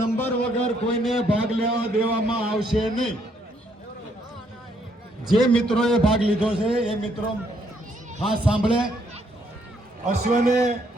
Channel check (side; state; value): both; normal; correlation 0.71